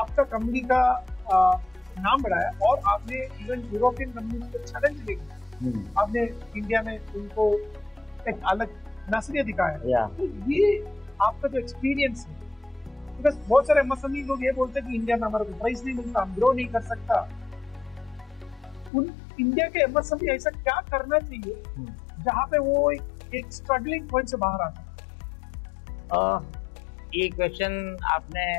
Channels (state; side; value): drops out; right; at 18.9 s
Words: कंपनी का नाम बढ़ाया, और आपने इवन यूरोपियन कंपनीज को चैलेंज लेके आपने इंडिया में उनको एक अलग नजरिया दिखाया। तो ये आपका जो एक्सपीरियंस है, बिकॉज बहुत सारे एमएसएमई लोग ये बोलते हैं कि इंडिया में हमारे को प्राइस नहीं मिलता, हम ग्रो नहीं कर सकता। उन इंडिया के एमएसएमई ऐसा क्या करना चाहिए जहाँ पे वो एक स्ट्रगलिंग पॉइंट से बाहर आ सके? ये क्वेश्चन